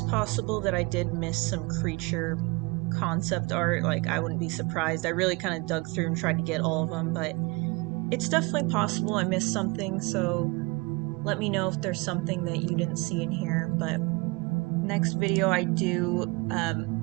possible that I did miss some creature concept art, like I wouldn't be surprised. I really kind of dug through and tried to get all of them, but it's definitely possible I missed something, so let me know if there's something that you didn't see in here. But next video I do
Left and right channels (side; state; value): left; quieter; 26.8 dB